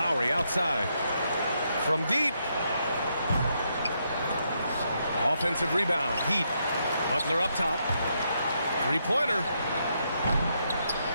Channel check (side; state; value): both; inverted; correlation -0.78